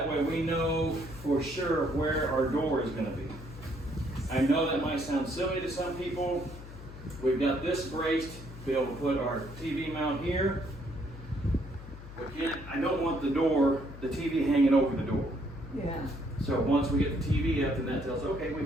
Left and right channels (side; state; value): left; noise; hum, 14 dB below the sound